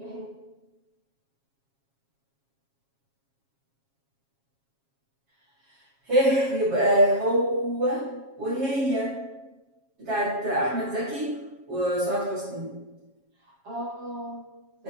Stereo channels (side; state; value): left; late; 7.3 ms